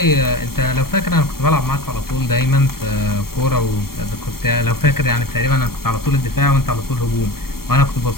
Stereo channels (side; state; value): right; late; 0.93 ms